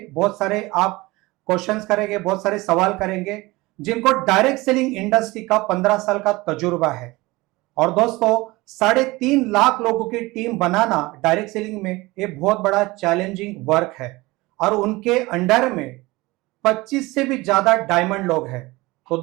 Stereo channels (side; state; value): left; quieter; 21.5 dB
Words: बहुत सारे आप क्वेश्चंस करेंगे, बहुत सारे सवाल करेंगे, जिनको डायरेक्ट सेलिंग इंडस्ट्री का 15 साल का तजुर्बा है। और दोस्तों, 3.5 लाख लोगों की टीम बनाना डायरेक्ट सेलिंग में एक बहुत बड़ा चैलेंजिंग वर्क है और उनके अंडर में 25 से भी ज्यादा डायमंड लोग हैं। तो